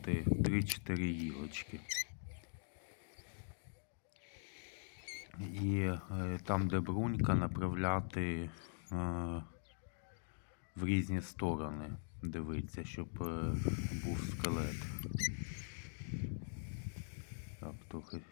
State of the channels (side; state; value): right; silent; digital silence